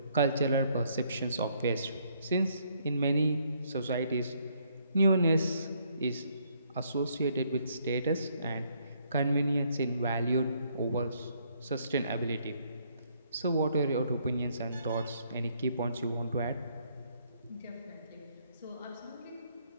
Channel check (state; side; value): inverted; both; correlation -0.69